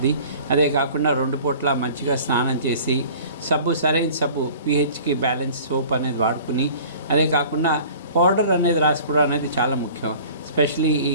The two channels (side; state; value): both; inverted; correlation -0.46